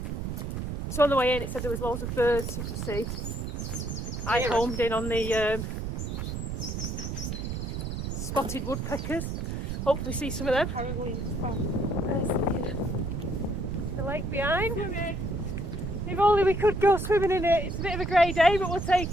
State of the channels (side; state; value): right; noise; rumble, 4 dB below the sound